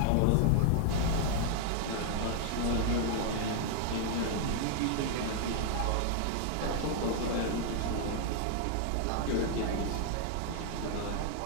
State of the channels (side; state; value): both; different; correlation 0.00